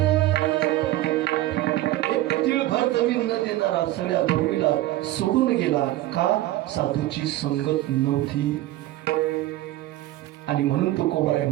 एक तिळभर जमीन न देणारा सगळ्या भूमीला सोडून गेला. का? साधूची संगत नव्हती. आणि म्हणून तो कोबराय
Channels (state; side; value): quieter; left; 15.9 dB